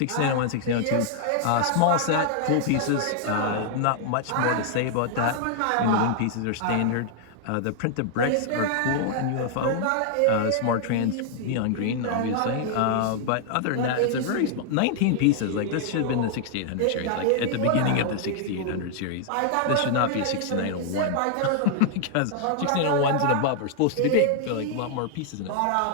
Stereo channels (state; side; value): different; both; correlation -0.01